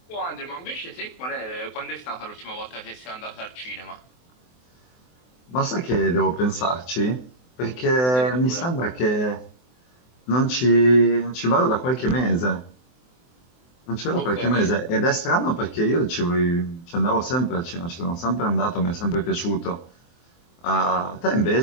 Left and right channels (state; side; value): late; right; 24 ms